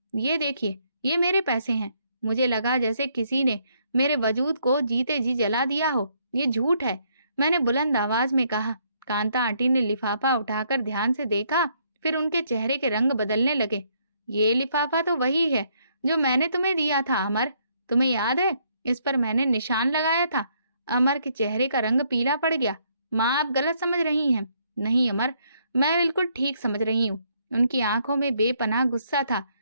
ये देखिए, ये मेरे पैसे हैं। मुझे लगा जैसे किसी ने मेरे वजूद को जीते जी जला दिया हो। ये झूठ है, मैंने बुलंद आवाज में कहा। कांता आंटी ने लिफाफा उठाकर ध्यान से देखा, फिर उनके चेहरे के रंग बदलने लगे। ये लिफाफा तो वही है जो मैंने तुम्हें दिया था अमर, तुम्हें याद है? इस पर मैंने निशान लगाया था। अमर के चेहरे का रंग पीला पड़ गया। माँ, आप गलत समझ रही हैं। नहीं अमर, मैं बिल्कुल ठीक समझ रही हूँ। उनकी आंखों में बेपनाह गुस्सा था।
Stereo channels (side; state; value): both; inverted; correlation -0.70